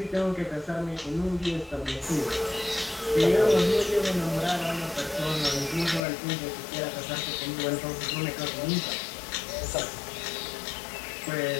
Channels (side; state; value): right; drops out; at 6.0 s